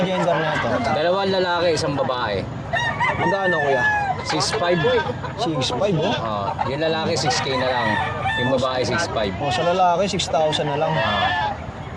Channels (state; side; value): identical; both; correlation 1.00